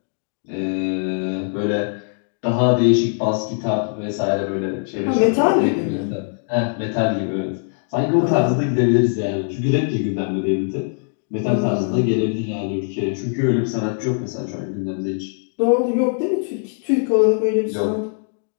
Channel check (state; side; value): silent; right; digital silence